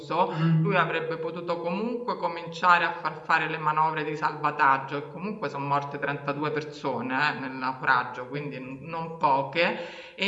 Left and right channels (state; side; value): identical; both; correlation 1.00